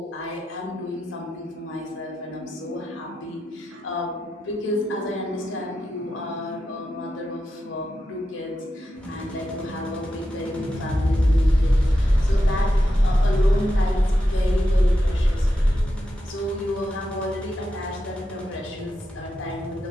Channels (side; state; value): both; normal; correlation 0.88